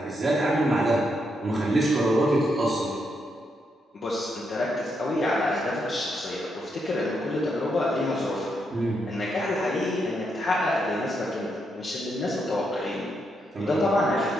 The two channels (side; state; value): both; normal; correlation 0.80